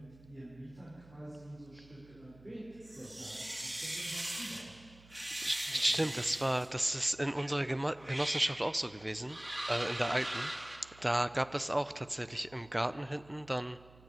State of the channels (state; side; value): noise; right; hum, 23 dB below the sound